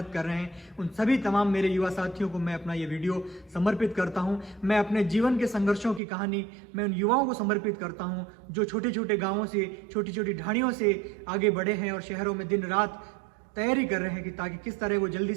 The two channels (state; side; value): drops out; left; at 6.0 s